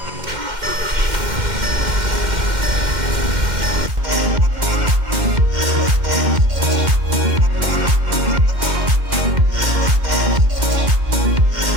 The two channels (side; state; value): left; late; 2.1 ms